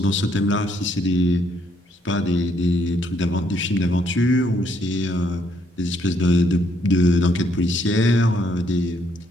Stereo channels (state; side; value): normal; both; correlation 0.70